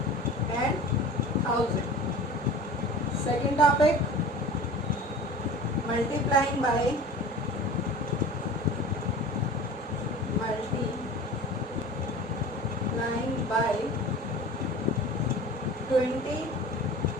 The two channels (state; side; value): normal; both; correlation 0.38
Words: and 1000. Second topic, multiplying by 20,